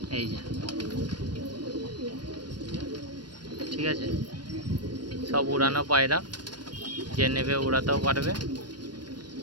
ঠিক আছে, সব উড়ানো পায়রা, যে নেবে উড়াতেও পারবে।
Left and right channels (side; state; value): left; late; 0.70 ms